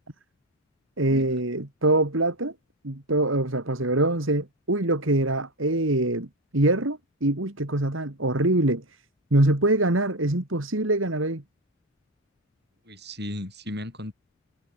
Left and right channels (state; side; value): normal; both; correlation 0.14